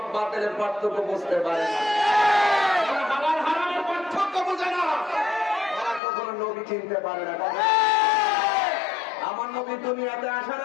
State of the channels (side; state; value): right; drops out; at 6.0 s